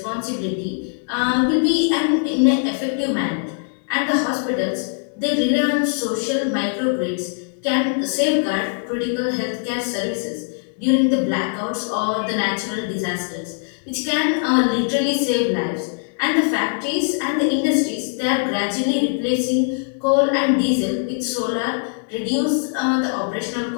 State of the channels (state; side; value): silent; right; 65 dB below the other